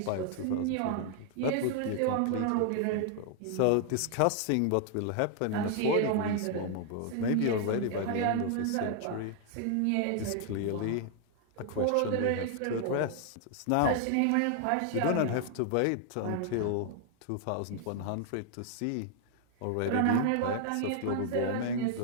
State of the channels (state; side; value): different; both; correlation 0.00